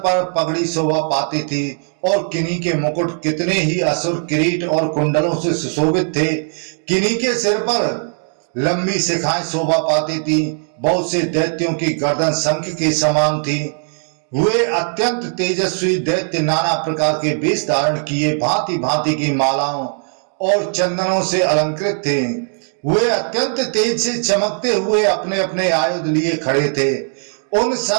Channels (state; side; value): silent; left; 56 dB below the other